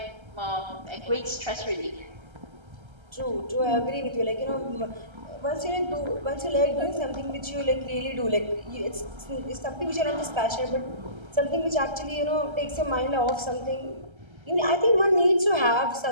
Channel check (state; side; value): late; left; 1.3 ms